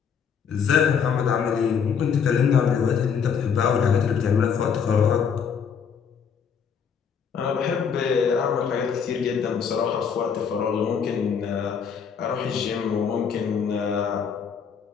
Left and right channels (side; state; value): right; quieter; 6.9 dB